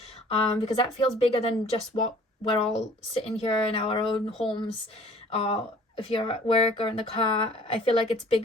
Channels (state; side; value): normal; both; correlation 0.52